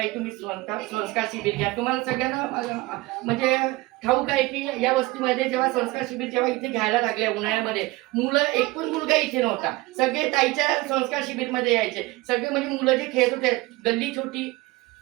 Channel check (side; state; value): left; quieter; 20.6 dB